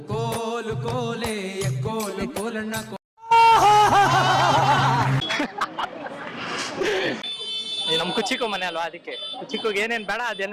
ಕೋಲು ಕೋಲೆ ಕೋಲು ಕೋಲಣ್ಣ. ನಮ್ ಕುಚಿಕು ಮನೆ ಅಲ್ವಾ, ಅದಕ್ಕೆ ಕುಚಿಕೋಗಿ ಏನೇನ್ ಬೇಡ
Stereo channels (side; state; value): both; identical; correlation 1.00